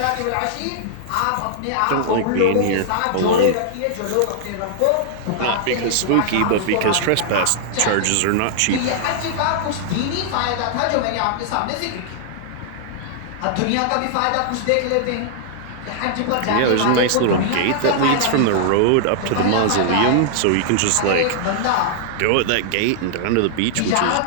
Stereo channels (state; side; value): different; both; correlation -0.01